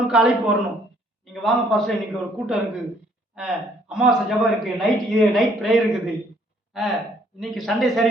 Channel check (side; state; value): both; normal; correlation 0.64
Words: அழைப்பு வரணும். நீங்கள் வாங்க பாஸ்டர், இன்னைக்கு ஒரு கூட்டம் இருக்குது, அமாவாசை ஜபம் இருக்குது, நைட் ப்ரேயர் இருக்குது, இன்னைக்கு சண்டே